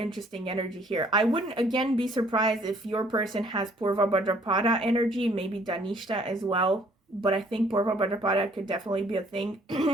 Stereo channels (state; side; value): normal; both; correlation 0.61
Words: energy here. I wouldn't again be surprised if your person has Purva Bhadrapada energy, maybe Dhanishta as well. But I think Purva Bhadrapada could definitely be a